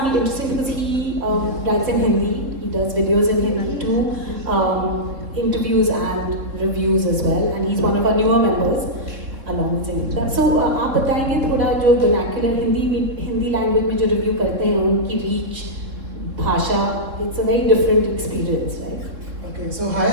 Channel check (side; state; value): left; late; 3.5 ms